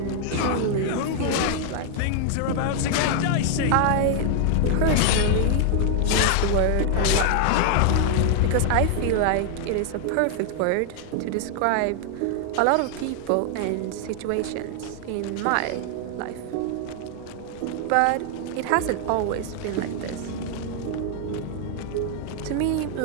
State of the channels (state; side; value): different; both; correlation 0.00